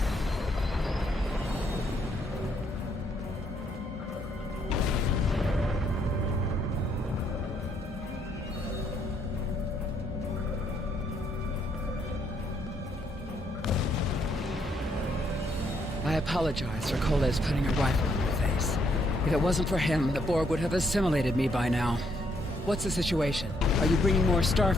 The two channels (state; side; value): normal; both; correlation 0.72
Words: I apologize for Coles putting a rifle in my face. If it wasn't for him, the Borg would have assimilated me by now. What's the situation? Are you bringing more